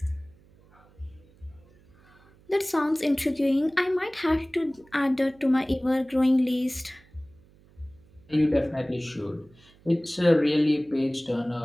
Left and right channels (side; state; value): right; noise; hum, 28 dB below the sound